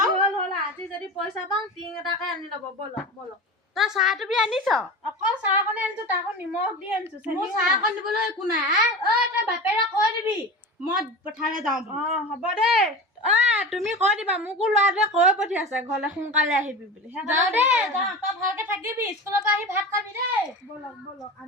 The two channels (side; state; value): both; normal; correlation 0.29